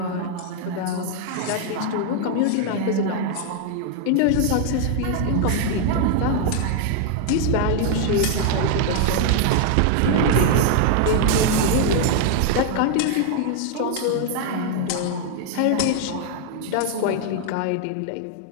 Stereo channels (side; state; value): both; different; correlation 0.00